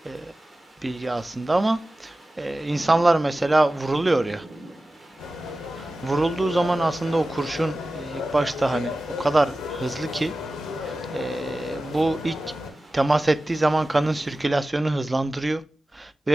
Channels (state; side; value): normal; both; correlation 0.95